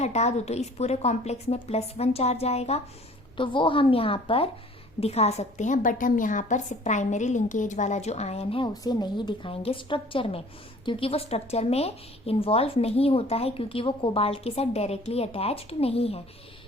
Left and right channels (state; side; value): normal; both; correlation 0.51